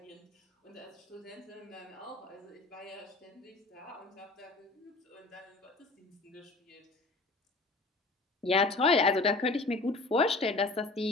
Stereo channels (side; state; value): right; quieter; 3.3 dB